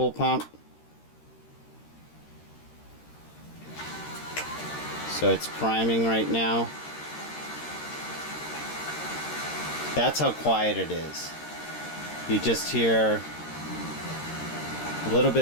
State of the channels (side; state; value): right; late; 13 ms